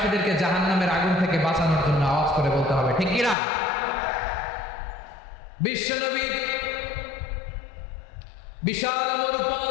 জাহান্নামের আগুন থেকে বাঁচানোর জন্য আওয়াজ করে বলতে হবে, ঠিক কিনা? বিশ্বনবী বিশাল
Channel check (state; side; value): drops out; right; at 3.4 s